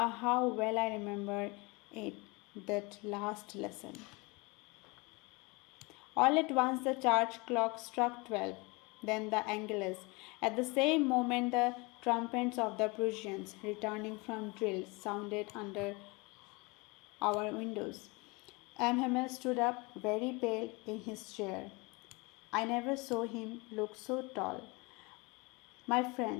how well I remember it, that last lesson. All at once the church clock struck 12, then the Angelus. At the same moment the trumpets of the Prussians, returning from drill, sounded under our windows. Hamel stood up, very pale, in his chair. I never saw him look so tall. My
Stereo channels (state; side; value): quieter; right; 26.9 dB